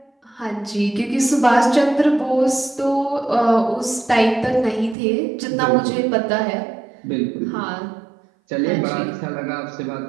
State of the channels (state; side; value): drops out; left; at 5.0 s